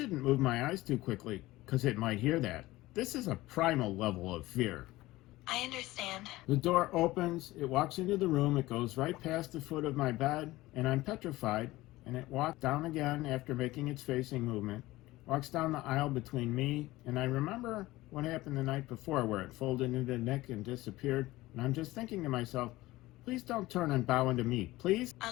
move my eyes too quickly, because it might hear that. This is a primal level of fear. I understand. The door opens, it walks into the room, it goes right past the foot of my bed, and I'm petrified, and it walks down again after making its facing movement, walks down the aisle between me, and I remember what happened the night before where it folded into Nick and disappeared, and I'm just thinking to myself, please don't turn and bow into me, please?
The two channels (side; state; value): right; quieter; 18.3 dB